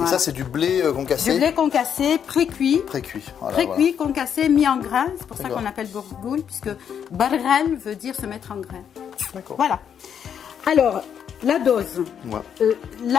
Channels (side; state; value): right; quieter; 8.2 dB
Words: Et ça c'est du blé concassé? Du blé concassé, pré-cuit. Pré-cuit. Voilà, Pré-cuit, concassé, mis en grains. C'est pour ça D'accord. qu'on appelle bourgoule, puisque barghal veut dire se mettre en grains. Voilà. D'accord. Voilà. Alors, la dose. Ouais.